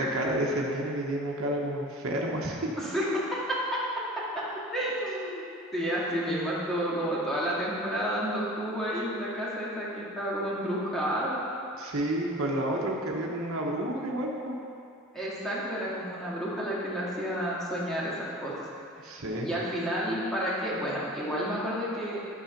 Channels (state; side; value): normal; both; correlation 0.40